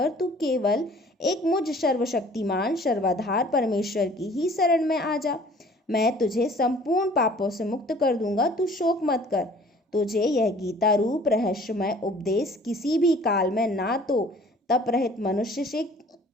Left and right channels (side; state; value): both; normal; correlation 0.52